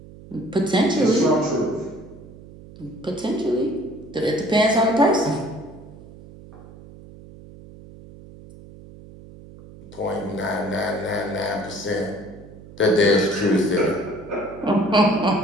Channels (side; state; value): right; noise; hum, 19 dB below the sound